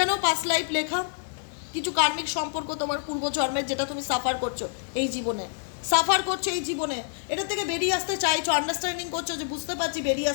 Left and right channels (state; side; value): silent; right; digital silence